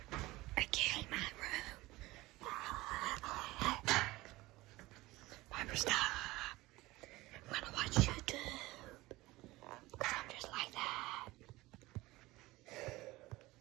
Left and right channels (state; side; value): quieter; left; 19.6 dB